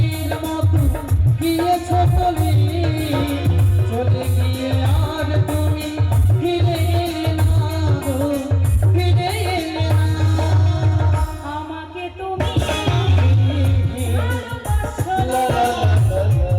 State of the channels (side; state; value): both; identical; correlation 1.00